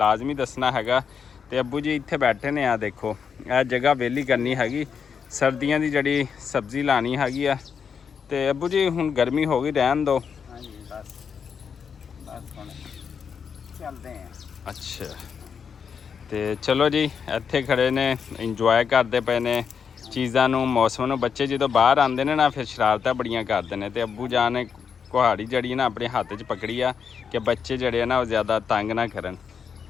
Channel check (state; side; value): quieter; right; 6.7 dB